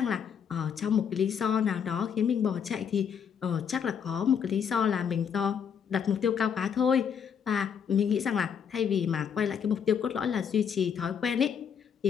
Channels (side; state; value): right; quieter; 7.5 dB